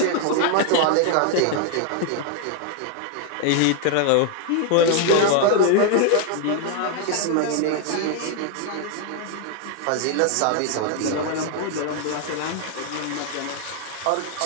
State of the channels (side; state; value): both; different; correlation 0.00